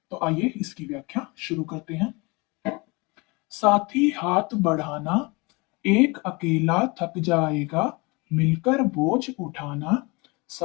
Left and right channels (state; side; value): quieter; right; 26.7 dB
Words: तो आइए इसकी व्याख्या शुरू करते हैं। साथी हाथ बढ़ाना, एक अकेला थक जाएगा, मिलकर बोझ उठाना,